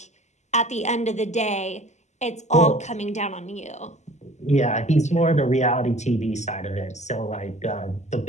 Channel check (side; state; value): right; late; 0.33 ms